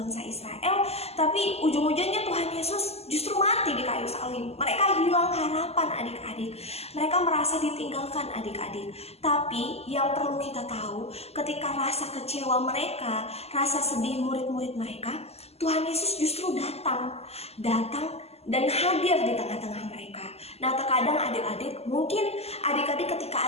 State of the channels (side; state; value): right; late; 0.30 ms